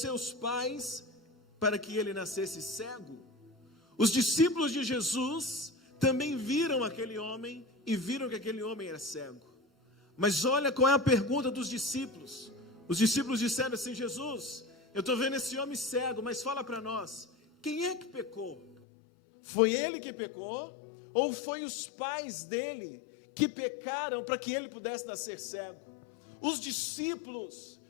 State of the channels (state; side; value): drops out; right; at 18.8 s